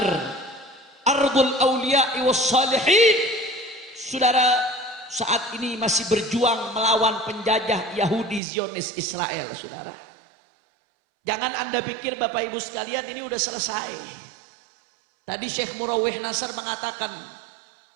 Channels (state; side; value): drops out; left; at 8.4 s